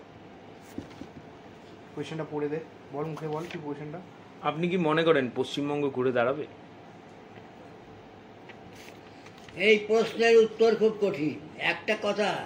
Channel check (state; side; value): identical; both; correlation 1.00